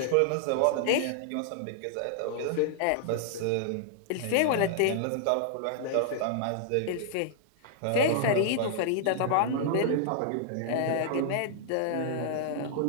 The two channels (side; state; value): both; different; correlation -0.01